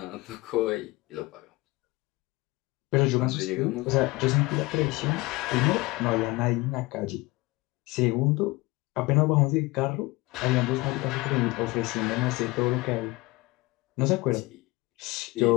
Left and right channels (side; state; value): right; quieter; 22.1 dB